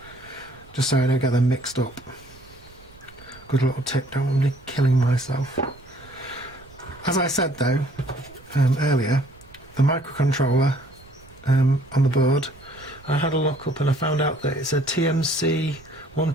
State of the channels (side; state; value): right; noise; rumble, 24 dB below the sound